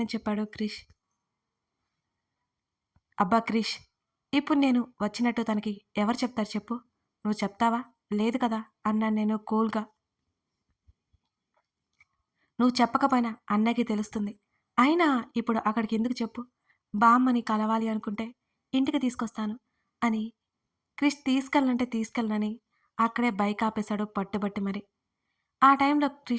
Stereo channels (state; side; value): identical; both; correlation 1.00